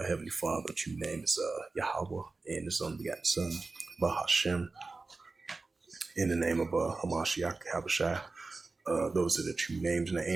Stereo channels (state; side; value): quieter; left; 3.7 dB